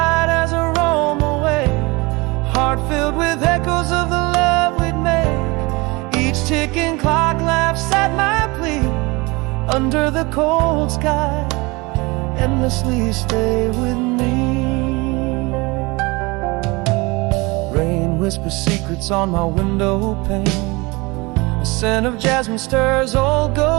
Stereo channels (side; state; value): left; quieter; 25.0 dB